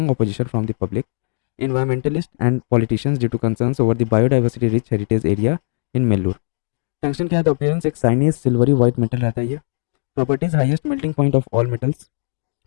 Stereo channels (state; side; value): silent; right; 66 dB below the other